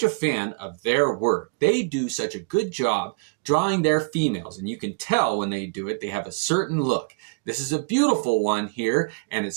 a fan of their work. They do such a good job drawing their females, and you can tell when they do it, they have a certain look. This is a beautiful one here, and it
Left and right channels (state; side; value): quieter; left; 32.1 dB